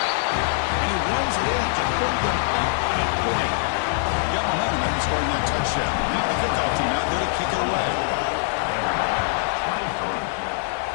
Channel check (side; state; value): right; silent; 63 dB below the other